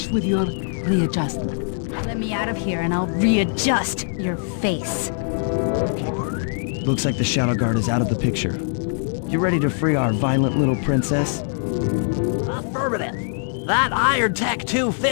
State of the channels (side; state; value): right; silent; 64 dB below the other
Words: with your readjustment. Let me out of here and I'll readjust your face. Okay, partner. Looks like the Shadow Guard is out of the picture. You ready to free our violent little princess? Affirmative. That Iron Tech